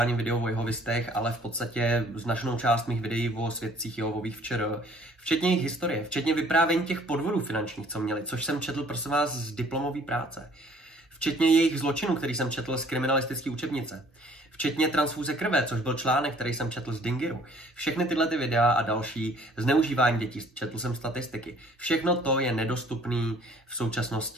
videu o jehovistech, ale v podstatě značnou část mých videí o svědcích Jehovových včera, včetně jejich historie, včetně vyprávění těch podvodů finančních, co měli, což jsem četl, prosím vás, z diplomové práce. Včetně jejich zločinů, který jsem četl z kriminalistické učebnice. Včetně transfúze krve, což byl článek, který jsem četl z Dingiru. Všechny tyhle ty videa a další, zneužívání dětí, četl jsem statistiky. Všechno to je nedostupné v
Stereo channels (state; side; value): normal; both; correlation 0.56